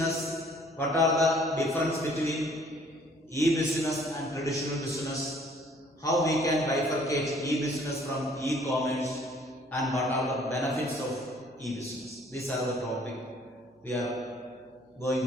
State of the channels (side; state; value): both; normal; correlation 0.58